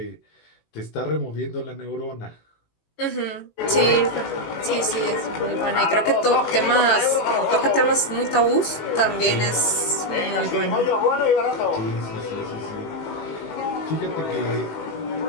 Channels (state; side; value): late; right; 18 ms